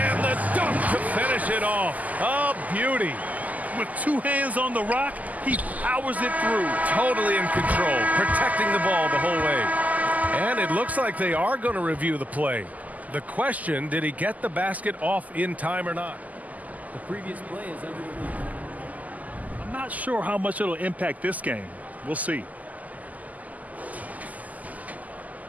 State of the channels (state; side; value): late; left; 0.077 ms